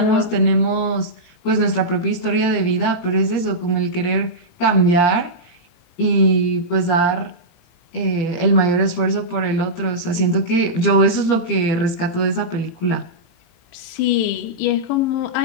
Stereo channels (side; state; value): right; late; 18 ms